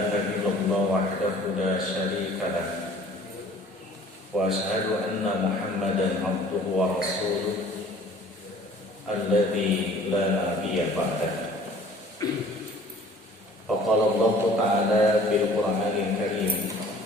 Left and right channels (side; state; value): both; normal; correlation 0.50